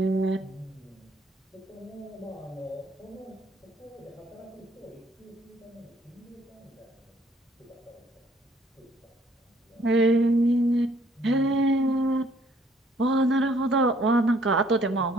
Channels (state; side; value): normal; both; correlation 0.63